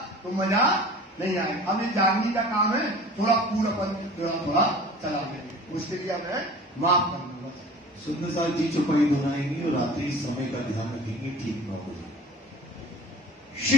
तो मजा नहीं आएगा। अब ये जानने का काम है, थोड़ा पूरापन थोड़ा चला देंगे, उसके लिए हमें माफ कर दूंगा। सुंदर साहब जी चौपाई दोहराएंगे और रात्रि समय का ध्यान रखेंगे, ठीक ना हो।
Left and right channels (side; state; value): both; normal; correlation 0.42